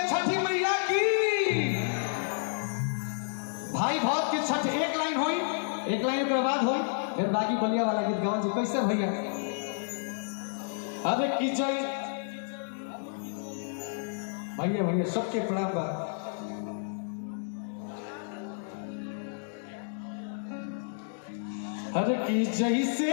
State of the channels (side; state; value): right; silent; digital silence